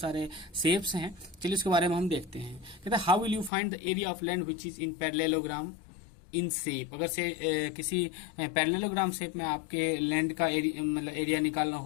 शेप्स हैं। चलिए इसके बारे में हम देखते हैं। कहता है how will you find the area of land which is in parallelogram in shape. अगर से किसी पैरेललोग्राम शेप में आपके लैंड का मतलब एरिया निकालना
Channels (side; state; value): right; drops out; at 3.5 s